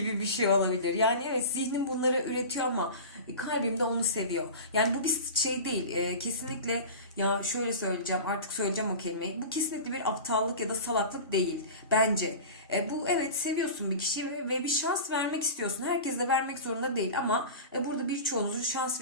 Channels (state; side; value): inverted; both; correlation -0.32